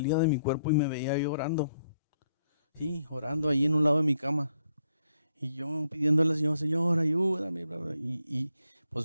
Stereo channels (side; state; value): both; inverted; correlation -0.76